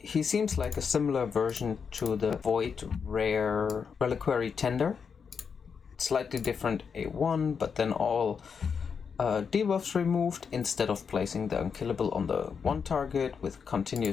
seems like a similar version to the Void Rare Reliquary Tender. Slightly different A1, but then all debuffs removed. Instead of placing the unkillable on the one target with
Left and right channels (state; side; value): quieter; right; 6.2 dB